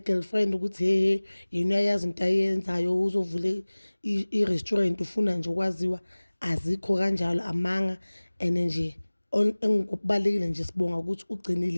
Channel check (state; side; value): inverted; both; correlation -1.00